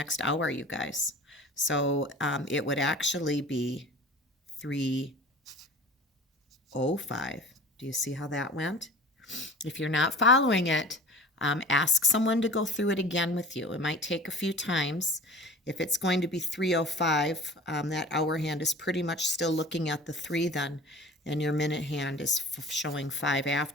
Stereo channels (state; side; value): normal; both; correlation 0.41